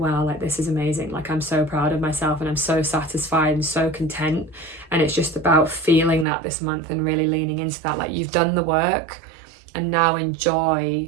like this is amazing, like I'm so proud of myself and I'm so satisfied and so content. And it's just about feeling that this month and really leaning into that, like you've done the work and now enjoy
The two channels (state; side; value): drops out; left; at 6.2 s